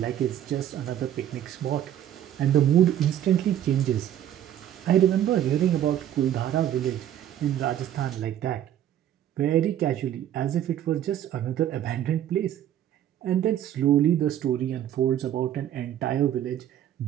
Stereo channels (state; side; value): quieter; left; 11.1 dB